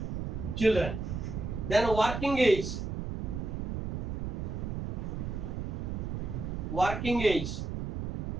Children. Then working age. Working age.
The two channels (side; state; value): right; noise; rumble, 4 dB below the sound